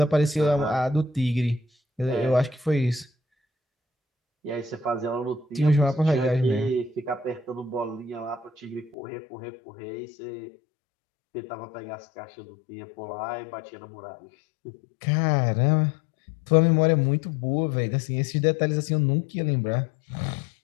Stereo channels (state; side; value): drops out; right; at 9.0 s